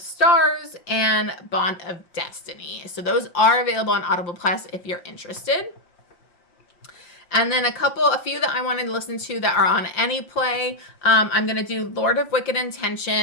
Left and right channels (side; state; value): right; late; 5.7 ms